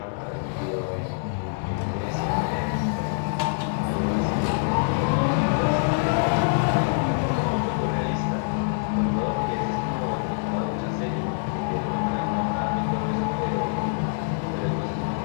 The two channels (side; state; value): right; silent; 62 dB below the other